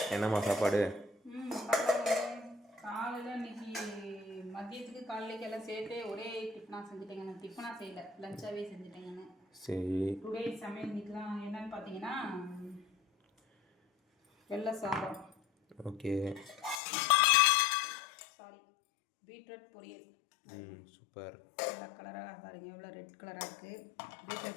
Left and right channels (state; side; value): drops out; right; at 16.8 s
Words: என்னம்மா சாப்பாடு? காலையில் இன்னைக்கு மதியத்துக்கு காலையிலேக்கு எல்லாம் சேர்த்து ஒரே டிஃபனாக செஞ்சுட்டேங்க. நான் டிஃபனாக செய்யலை, லஞ்சாகவே செஞ்சுட்டேங்கன்னு. சரி, டுடே சமையல் இன்னைக்குலாம் என்னன்னு பார்த்தீங்கன்னா வெள்ளை சாதம், ஓகே, சாரி பீட்ரூட் பொரியல். சூப்பர். வெள்ளை கலராக பாருங்க, எவ்வளோ ரெட் கலராக இருக்குது.